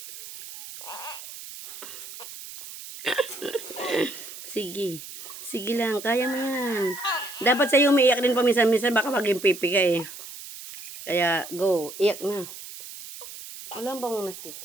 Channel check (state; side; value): noise; right; hiss, 13 dB below the sound